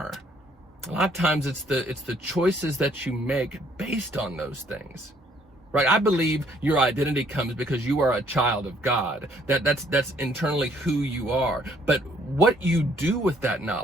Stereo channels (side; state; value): both; normal; correlation 0.64